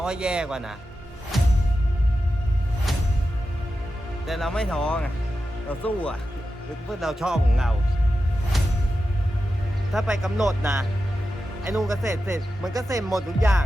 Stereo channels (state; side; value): normal; both; correlation 0.91